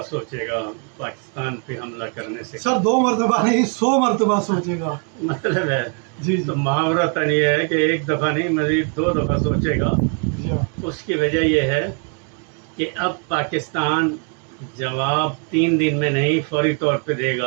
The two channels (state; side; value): quieter; left; 38.6 dB